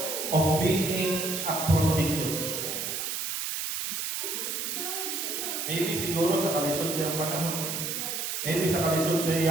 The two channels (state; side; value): noise; right; hiss, 3 dB below the sound